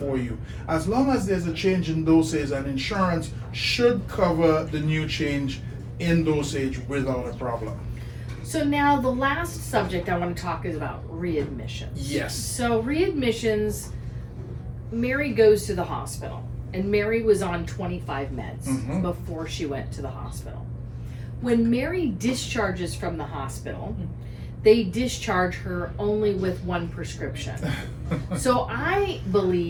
you? As long as there's a change in dosage, and insurance should cover the new change in dosage without a problem. So now the last subject I want to talk is about readmissions. Yes. So readmissions, Mary goes to the hospital, and Mary was on 25 meds Mhm. before she went to the hospital. When Mary discharges from the hospital, they discharge her only with 1 prescription. So I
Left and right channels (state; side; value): identical; both; correlation 1.00